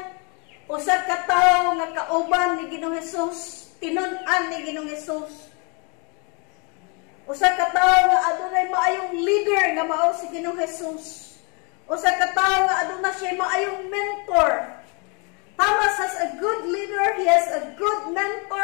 usa ka tawo nga kauban ni Ginoong Hesus, tinun-an ni Ginoong Hesus. Usa ka tawo nga adunay maayong leader nga mao si Ginoong Hesus. Usa ka tawo nga aduna siya maayong mentor. Thomas has a good leader, he has a good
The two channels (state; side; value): quieter; right; 33.7 dB